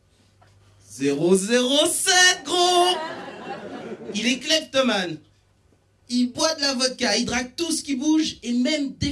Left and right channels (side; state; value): both; identical; correlation 1.00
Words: 007, gros! Il est kleptomane. Il boit de la vodka, il drague tout ce qui bouge, et même des